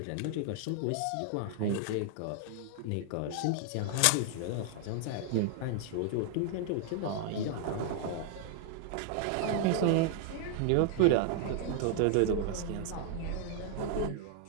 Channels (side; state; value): both; different; correlation -0.01